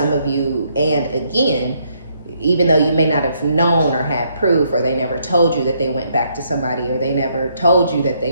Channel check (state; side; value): inverted; both; correlation -0.72